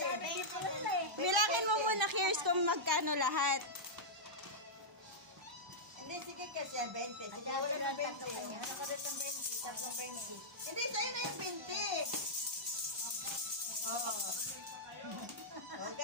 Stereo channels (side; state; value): both; normal; correlation -0.09